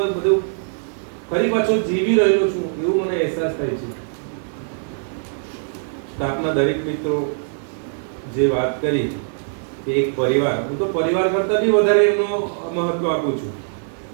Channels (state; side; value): silent; left; 62 dB below the other